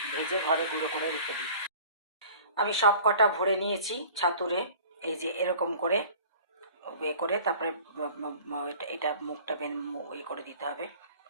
ভেজে ঘরে গুঁড়ো করে রেখে দিই। আমি সব কটা ভরে নিয়েছি ছাতুরে, এই যে এরকম করে করে তারপরে এটা মুখটা করে দিতে হবে।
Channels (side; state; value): both; inverted; correlation -0.46